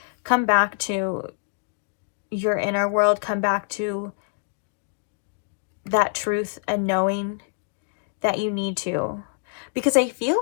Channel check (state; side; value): silent; right; digital silence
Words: come back to your inner world. Come back to that truth and knowing that you need to. Because I feel